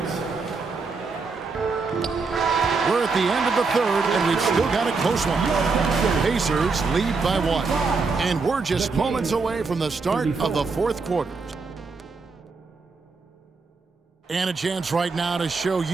We're at the end of the third, and we've still got a close one. Pacers lead by 1. And we're just moments away from the start of the fourth quarter. And a chance right now to show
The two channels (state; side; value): quieter; left; 4.4 dB